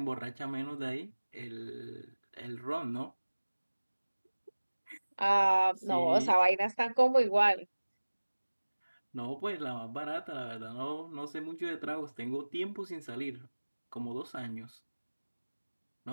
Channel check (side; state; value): both; inverted; correlation -1.00